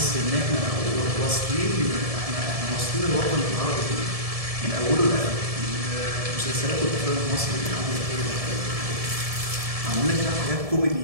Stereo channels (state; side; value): late; left; 1.7 ms